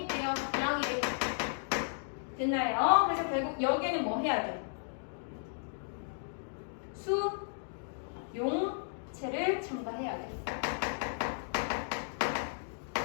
있대요. 양이래. 됐나요? 그래서 결국 여기에는 뭐 해야 돼? 수, 용체를 첨가해야 돼.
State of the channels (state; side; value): silent; right; digital silence